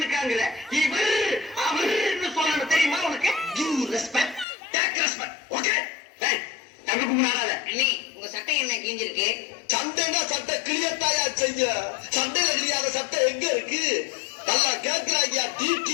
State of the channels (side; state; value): right; drops out; at 4.5 s